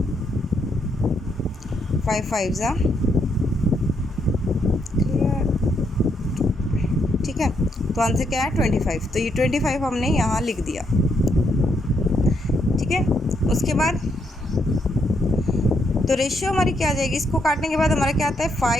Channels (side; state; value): both; normal; correlation 0.76